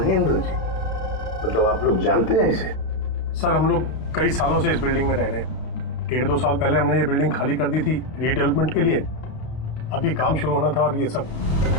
जी? मतलब आप लोग जानते हैं इसे? सर हम लोग कई सालों से इस बिल्डिंग में रह रहे हैं। 1.5-2 साल पहले हमने ये बिल्डिंग खाली कर दी थी रीडेवलपमेंट के लिए। अभी काम शुरू होना था और ये सब।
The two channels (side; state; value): right; late; 32 ms